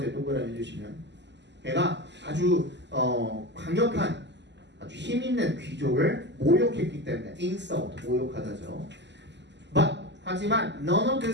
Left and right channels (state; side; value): late; left; 0.51 ms